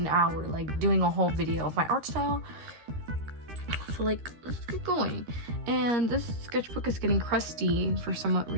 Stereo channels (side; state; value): left; late; 13 ms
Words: hour doing a whole video of my art style. So let's get going. And this sketchbook is getting crusty for some